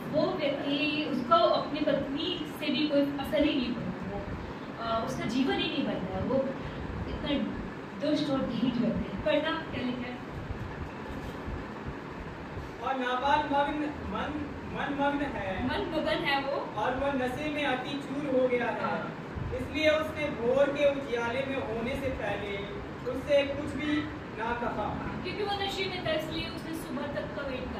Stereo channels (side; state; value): both; identical; correlation 1.00